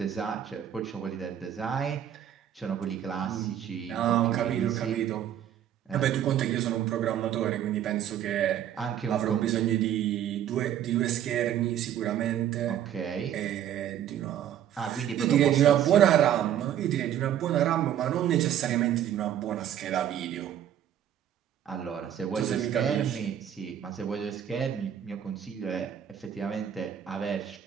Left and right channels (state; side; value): quieter; left; 10.4 dB